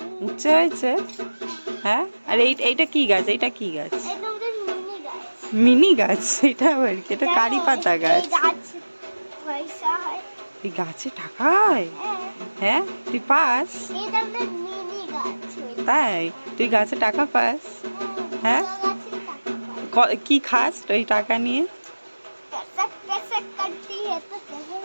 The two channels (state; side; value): inverted; both; correlation -1.00